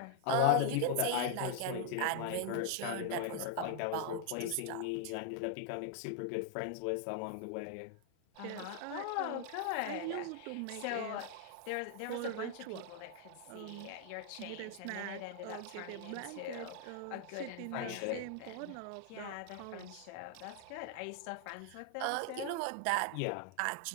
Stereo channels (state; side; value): different; both; correlation 0.00